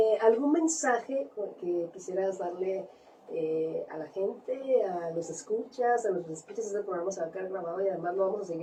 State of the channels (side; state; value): both; identical; correlation 1.00